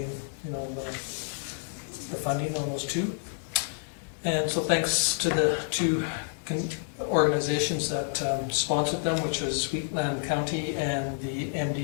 the funding on those two. And so thanks to the two organizations that sponsored them, which was Wheatland County and the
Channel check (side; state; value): right; silent; digital silence